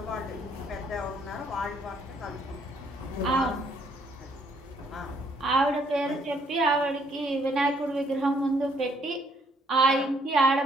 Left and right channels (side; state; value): both; normal; correlation 0.67